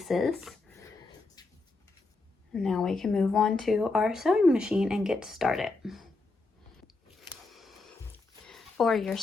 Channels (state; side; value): quieter; right; 3.5 dB